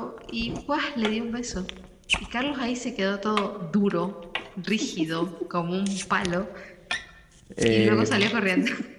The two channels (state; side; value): identical; both; correlation 1.00